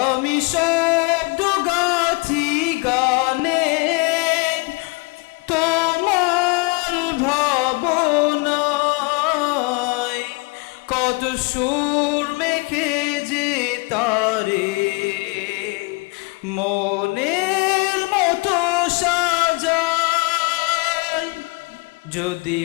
আমি শব্দ গাথি গানে তোমার ভাবনায়, কত সুর মেখে যে তারে মনের মতো সাজায়। যদি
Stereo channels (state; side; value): quieter; right; 27.5 dB